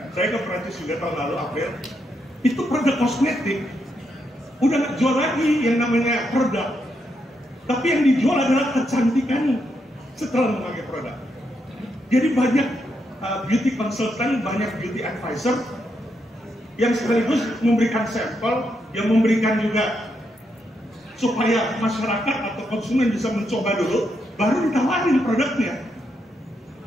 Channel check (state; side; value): normal; both; correlation 0.81